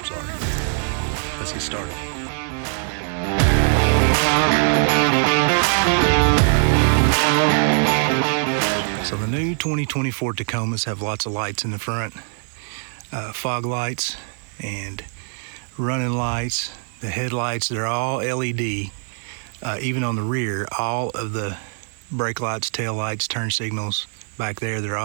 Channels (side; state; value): left; silent; 55 dB below the other